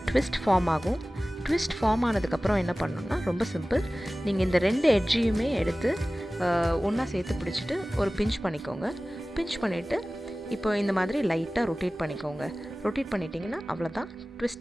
ட்விஸ்ட் ஃபார்ம் ஆகும். ட்விஸ்ட் ஃபார்ம் ஆனதுக்கப்புறம் என்ன பண்ணணும்னா ரொம்ப சிம்பிள். நீங்கள் இந்த 2 எட்ஜையுமே எடுத்து ஒன்றா சேர்த்து பிடிச்சிட்டு ஒரு பிஞ்ச் பண்ணிக்கோங்க. பிஞ்ச் பண்ணிவிட்டு இப்போ இந்த மாதிரி லைட்டாக ரொட்டேட் பண்ணிக்கோங்க. ரொட்டேட் பண்ணிட்டீங்கன்னா அவ்வளோதான்,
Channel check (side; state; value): both; normal; correlation 0.97